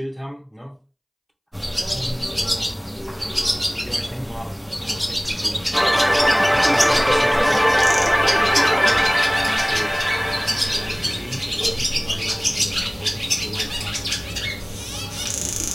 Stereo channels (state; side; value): identical; both; correlation 1.00